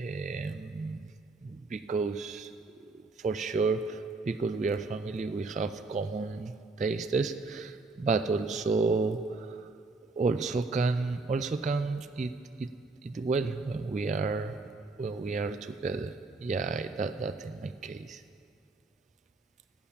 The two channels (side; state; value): left; quieter; 3.7 dB